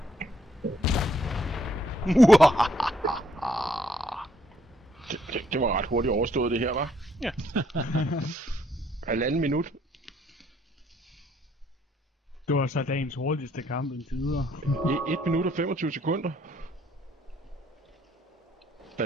Det var ret hurtigt overstået det her, var? Ja. 1,5 minut. Det var så dagens hurtigste kamp indtil videre. 1 minut og 25 sekunder. Er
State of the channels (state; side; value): normal; both; correlation 0.68